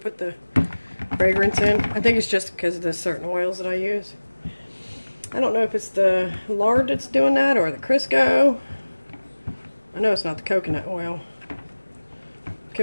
the fragrance in. I think it's just because of the certain oils that I use. I don't know if it's the lard that's doing that or the Crisco. I know it's not the coconut oil.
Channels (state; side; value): inverted; both; correlation -1.00